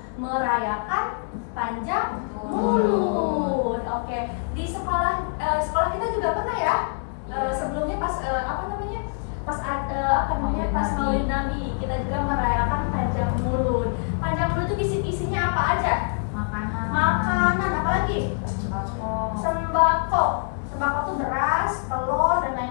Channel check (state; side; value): silent; right; 62 dB below the other